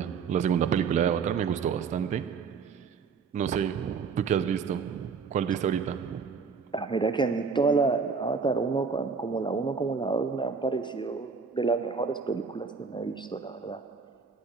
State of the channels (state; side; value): quieter; left; 5.5 dB